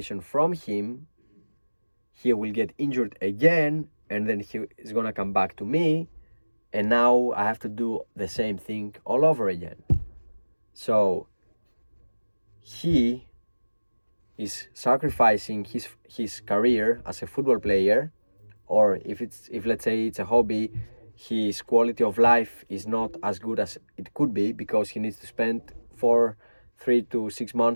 from him, he will get injured again, and then he is gonna come back to me, and now I have to do the same thing all over again. So he is sacrificing his career as a football player, or if let's say it's a hobby, his quality of life is not as good as it could be because he needs to spend 3 to 6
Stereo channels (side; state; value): both; inverted; correlation -1.00